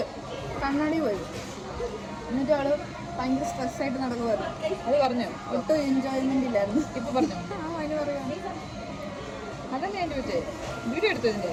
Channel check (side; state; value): both; identical; correlation 1.00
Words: കണ്ണാടി പോയി. എന്നിട്ട് അവള് ഭയങ്കര സ്ട്രെസ്സായിട്ട് നടക്കുമായിരുന്നു. അത് പറഞ്ഞു ഒട്ടും എൻജോയ്മെൻ്റ് ഇല്ലായിരുന്നു. ഇപ്പൊ പറഞ്ഞു അതിന് പറയാം. അതന്നെ ഞാൻ ചോദിച്ചേ. വീഡിയോ എടുത്തു ഇതിൻ്റെ